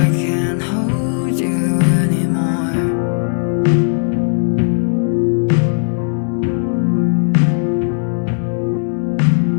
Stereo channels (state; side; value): silent; right; digital silence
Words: can't hold you anymore.